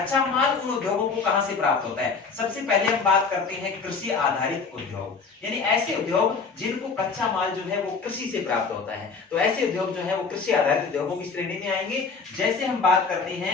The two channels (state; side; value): quieter; right; 4.9 dB